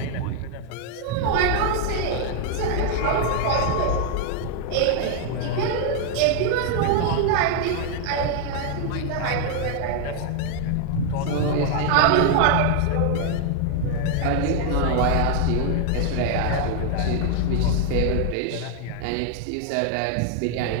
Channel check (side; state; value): both; different; correlation 0.00